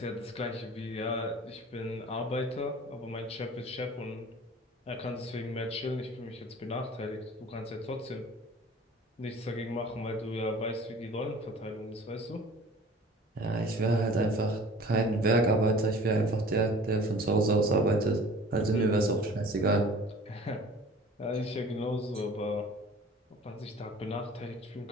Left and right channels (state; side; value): normal; both; correlation 0.45